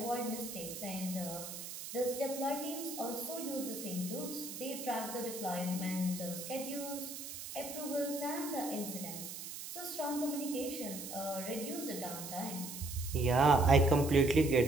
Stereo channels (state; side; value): noise; right; hiss, 9 dB below the sound